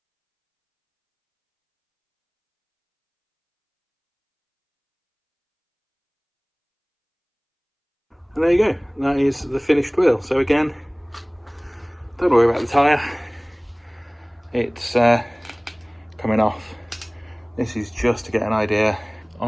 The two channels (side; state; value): both; identical; correlation 1.00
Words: And there you go, that is the finished wheel. So again, don't worry about the tyre, it's coming off. This is just to get an idea